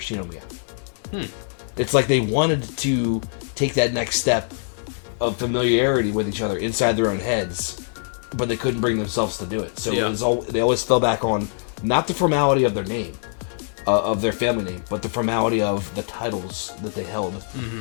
It's like they wanted to take that next step of familiarity with each other inside their own heads, but they couldn't bring themselves to do it. So it was they always fell back on not the formality of their name, of their family name, but the formality of the titles that they held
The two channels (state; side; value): silent; right; digital silence